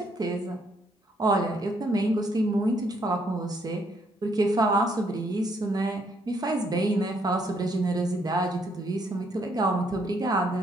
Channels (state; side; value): normal; both; correlation 0.71